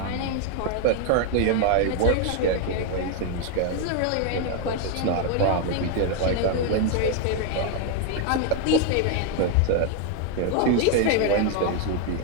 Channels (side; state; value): both; different; correlation 0.01